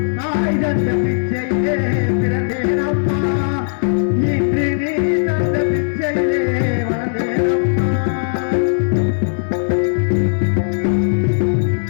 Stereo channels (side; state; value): right; silent; digital silence